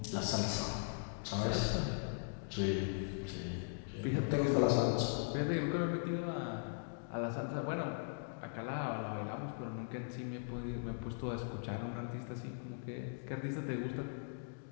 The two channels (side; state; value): right; silent; digital silence